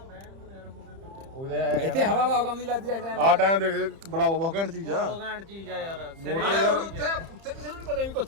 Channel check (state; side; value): late; left; 30 ms